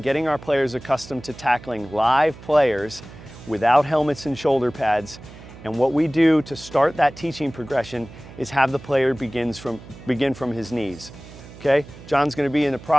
getting our players accustomed to tackling live players without helmets and shoulder pads. And what we do to start that teaching progression is have the player begin from his knees, okay? John's gonna be in the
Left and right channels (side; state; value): right; noise; hum, 18 dB below the sound